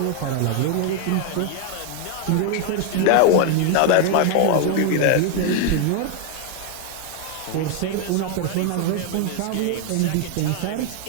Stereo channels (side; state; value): both; different; correlation 0.01